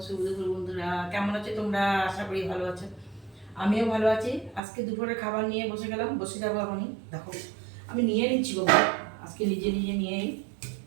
শুভ দুপুর বন্ধুরা, কেমন আছো তোমরা? আশা করি ভালো আছো। আমিও ভালো আছি। আজকে দুপুরে খাবার নিয়ে বসে গেলাম, বসে যাবো এখনই। দেখো আমি নিয়ে নিচ্ছি গো ভাত, আজকে নিজে নিজে নিয়েই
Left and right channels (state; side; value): drops out; left; at 4.6 s